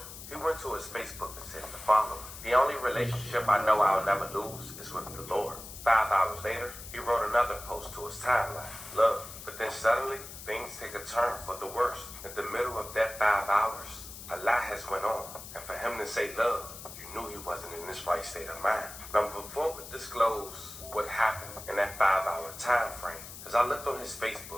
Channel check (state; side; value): noise; left; hiss, 13 dB below the sound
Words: he went to his Facebook and said the following: "The only relationship I know I'll never lose is with the Lord." 5 hours later, he wrote another post to his timeline: "Love." But then suddenly, things take a turn for the worse. In the middle of that 5 hours, a lot has went on. And for him to say love, you knew he wasn't in this right state of mind. Now, before we disclose what happened in that 5-hour time frame, as I looked on his